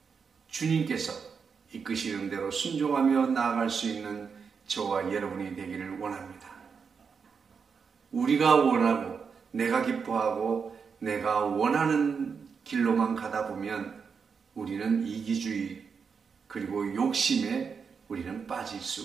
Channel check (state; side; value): quieter; left; 5.9 dB